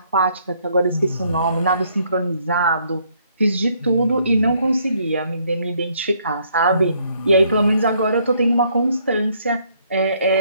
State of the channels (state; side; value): inverted; both; correlation -0.68